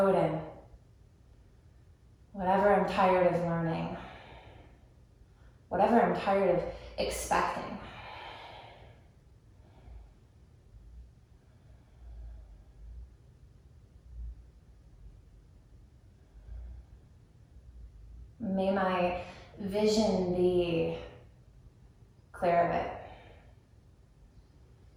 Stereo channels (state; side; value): identical; both; correlation 1.00